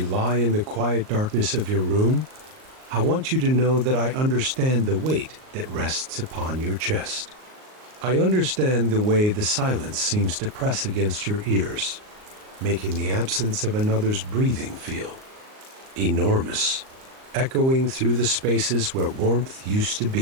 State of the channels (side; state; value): left; late; 38 ms